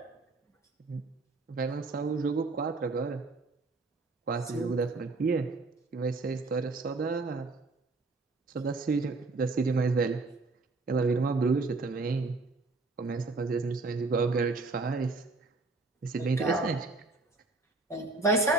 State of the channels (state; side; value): quieter; left; 3.5 dB